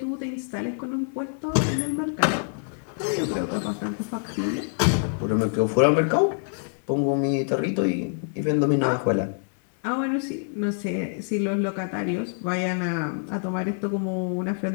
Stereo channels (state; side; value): silent; right; 61 dB below the other